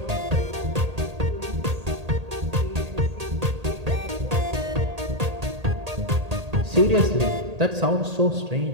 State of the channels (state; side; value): late; left; 1.8 ms